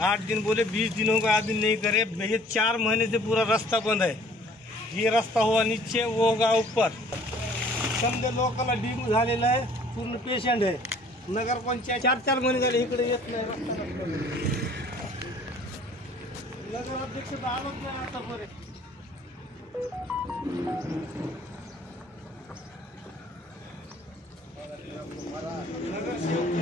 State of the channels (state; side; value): normal; both; correlation 0.54